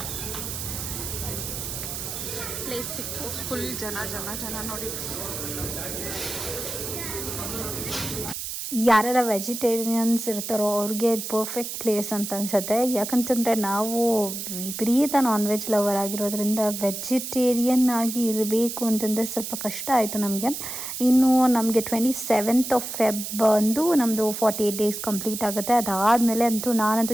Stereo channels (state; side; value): noise; right; hiss, 6 dB below the sound